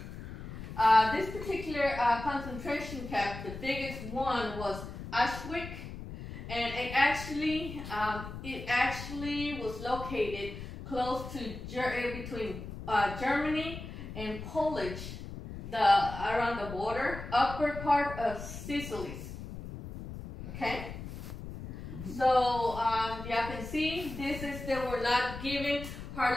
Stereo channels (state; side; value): noise; left; rumble, 10 dB below the sound